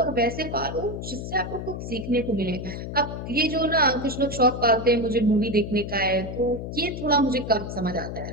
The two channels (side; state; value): left; noise; hum, 7 dB below the sound